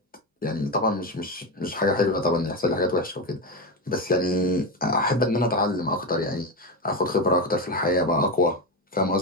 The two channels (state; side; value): normal; both; correlation 0.15